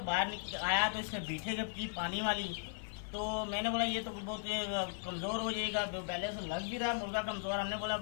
बाहर आया तो इसने बीठे जब की पानी वाली, तो मैंने बोला ये तो बहुत कमज़ोर हो जाएगा, पहले से लग भी रहा मुर्गा कमज़ोर। हमने बोला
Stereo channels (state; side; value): silent; right; digital silence